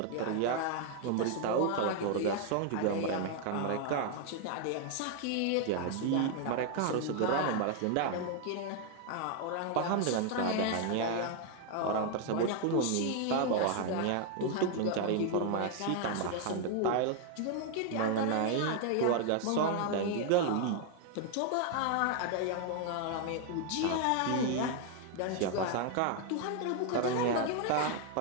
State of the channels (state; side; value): different; both; correlation 0.01